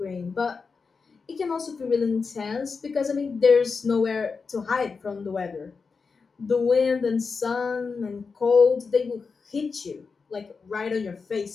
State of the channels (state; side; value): quieter; right; 4.9 dB